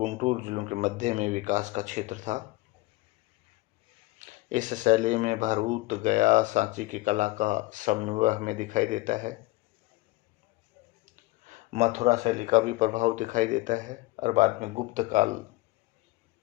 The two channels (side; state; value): right; quieter; 20.4 dB